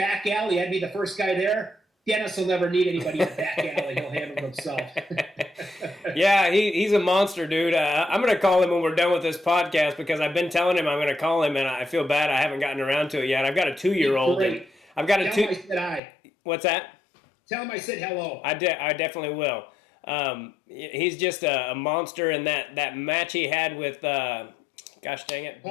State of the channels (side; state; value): right; drops out; at 16.0 s